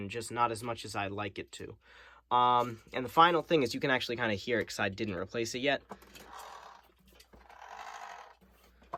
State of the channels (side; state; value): both; identical; correlation 1.00